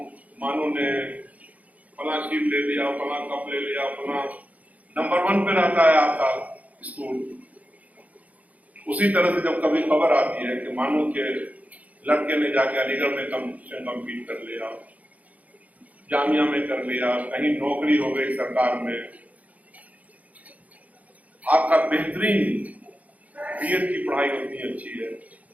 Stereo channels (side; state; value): left; late; 0.072 ms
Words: मानू ने फला चीज ले लिया, फला कप ले लिया, फला नंबर 1 पे रहता है आपका स्कूल। उसी तरह से जब कभी खबर आती है कि मानू के लड़के ने जाके अलीगढ़ में कंपटीशन कम्पीट कर लिया, जामिया में कर लिया, कहीं नौकरी हो गई सरकार में, आपका बेहतरीन BEd की पढ़ाई उतनी अच्छी है,